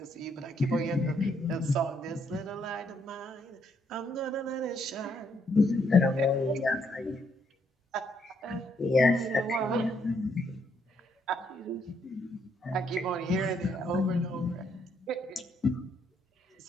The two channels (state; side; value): normal; both; correlation 0.73